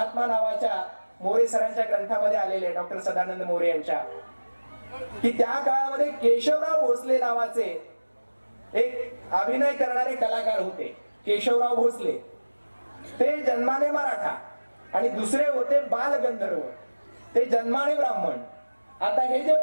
नावाच्या मोरे सरांच्या ग्रंथामध्ये आलेले आहे, डॉक्टर सदानंद मोरे यांच्या, की त्या काळामध्ये केशवराव भोसले नावाचे एक अभिनय करणारे कलाकार होते. केशवराव भोसले ते जन्माने मराठा आणि दुसरे होते बालगंधर्व, ते जन्माने ब्राह्मण. आता हे जे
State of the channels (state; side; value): inverted; both; correlation -1.00